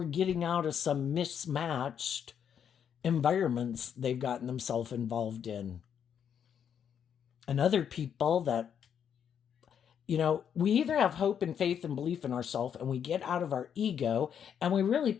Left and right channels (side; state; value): right; quieter; 8.3 dB